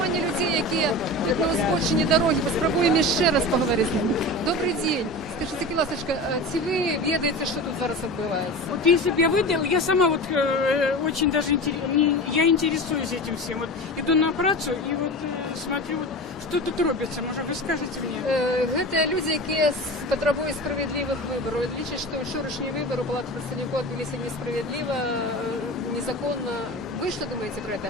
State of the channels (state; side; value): normal; both; correlation 0.30